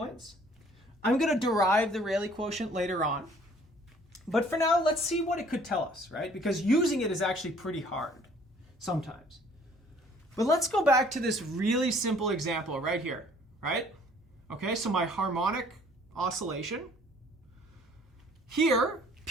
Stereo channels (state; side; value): normal; both; correlation 0.57